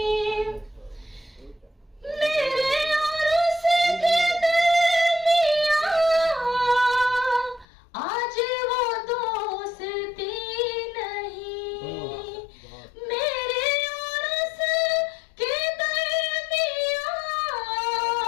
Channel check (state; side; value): drops out; right; at 7.7 s